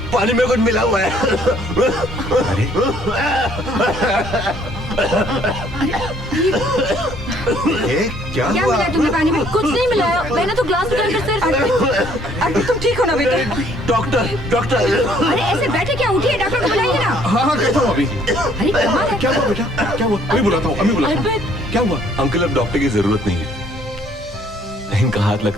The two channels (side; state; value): both; normal; correlation 0.62